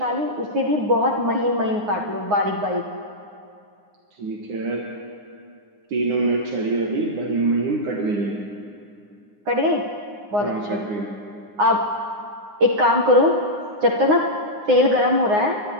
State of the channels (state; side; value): late; left; 9.7 ms